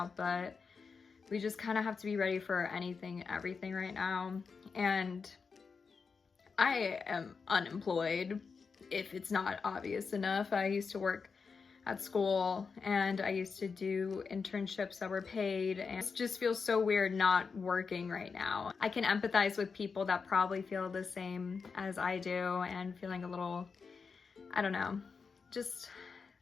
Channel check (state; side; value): quieter; right; 5.3 dB